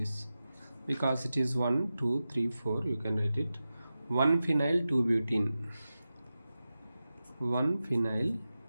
Because it is 1, 2, 3, 4, you can write it. 1 phenyl 2 butene. 1 phenyl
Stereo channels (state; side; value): inverted; both; correlation -0.93